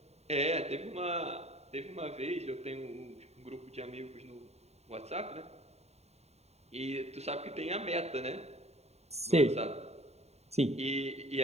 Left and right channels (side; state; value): left; late; 0.31 ms